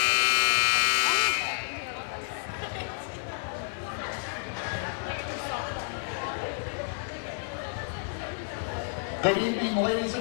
Good evening, ladies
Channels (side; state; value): right; silent; digital silence